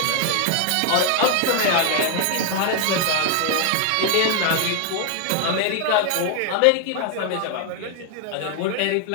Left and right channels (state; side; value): different; both; correlation 0.00